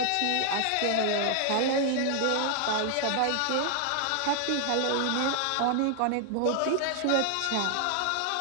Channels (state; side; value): different; both; correlation 0.00